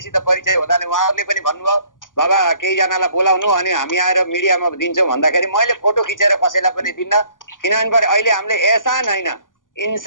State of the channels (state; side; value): late; right; 0.88 ms